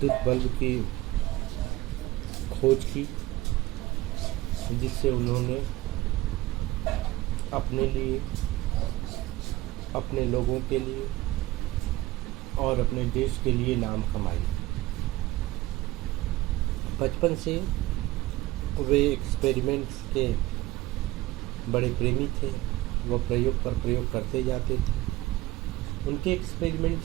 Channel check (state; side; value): quieter; left; 18.1 dB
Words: बल्ब की खोज की, जिससे उन्होंने अपने लिए, अपने लोगों के लिए और अपने देश के लिए नाम कमाई। बचपन से वे एक्सपेरिमेंट्स के बड़े प्रेमी थे। वह प्रयोग पर प्रयोग करते जाते थे। उनके